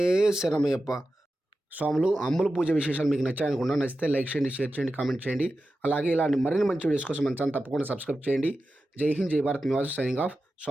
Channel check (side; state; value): both; normal; correlation 0.92